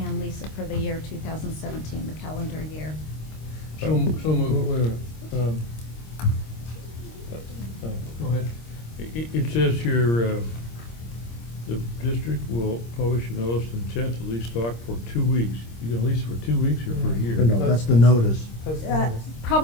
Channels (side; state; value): right; late; 26 ms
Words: lease it for the year 2017, the calendar year. So moved. Go ahead. It says here, the district will publish a notice of intent to lease stock for 2 weeks. You gonna lease it for 2 weeks or for a year? No, that's the notice. Post notice.